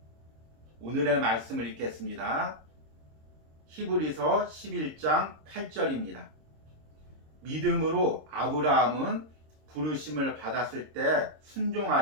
오늘의 말씀을 읽겠습니다. 히브리서 11장 8절입니다. 믿음으로 아브라함은 부르심을 받았을 때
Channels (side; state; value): left; late; 26 ms